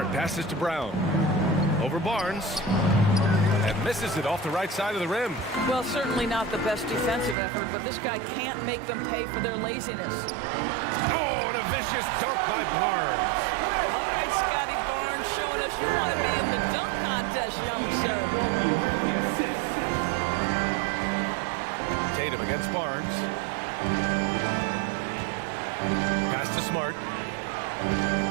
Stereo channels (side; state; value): left; drops out; at 7.4 s